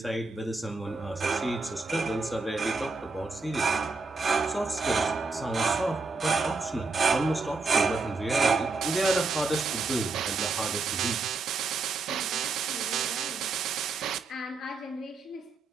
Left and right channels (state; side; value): quieter; left; 3.9 dB